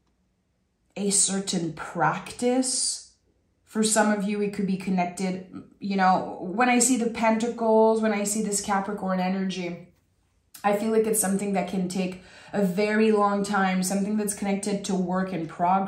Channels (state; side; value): identical; both; correlation 1.00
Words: a certain practice. For some of you, it could be connected. You know, when I see the Pentacles, when I see this Capricorn energy, I feel like it's something that can take a very long time, something that's connected to work in